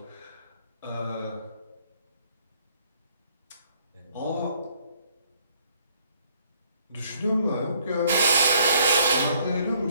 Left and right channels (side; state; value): both; inverted; correlation -0.64